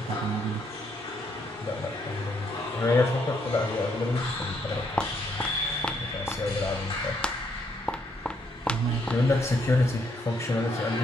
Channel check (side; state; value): both; normal; correlation 0.73